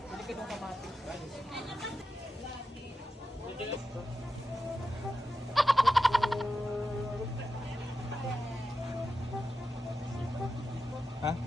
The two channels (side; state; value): both; normal; correlation 0.91